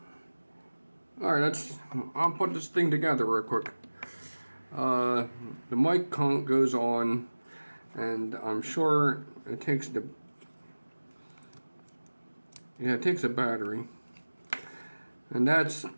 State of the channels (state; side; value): inverted; both; correlation -1.00